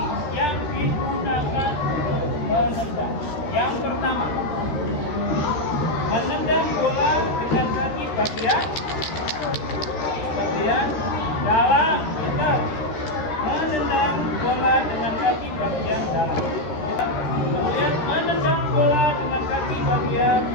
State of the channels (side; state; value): right; late; 13 ms